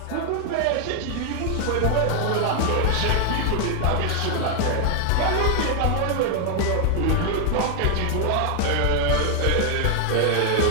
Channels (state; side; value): different; both; correlation 0.00